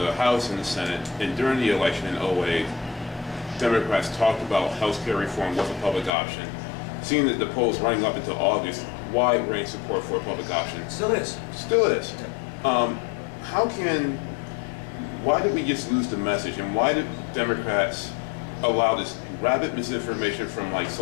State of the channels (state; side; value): drops out; right; at 6.1 s